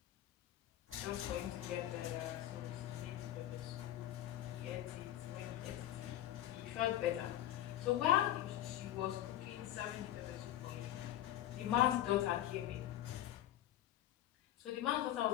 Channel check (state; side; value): quieter; right; 13.0 dB